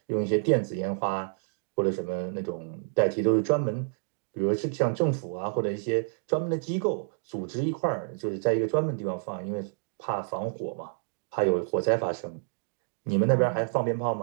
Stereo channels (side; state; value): left; silent; digital silence